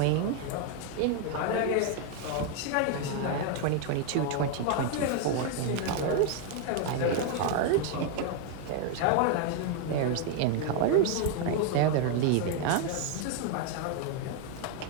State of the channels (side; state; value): both; different; correlation 0.01